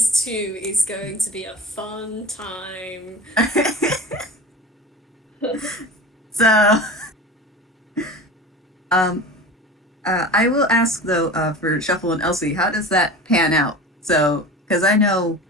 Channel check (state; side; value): normal; both; correlation 0.34